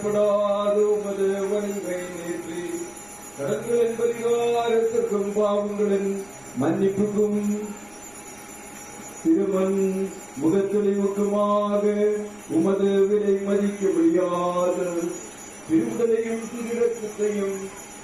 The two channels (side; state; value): right; noise; rumble, 28 dB below the sound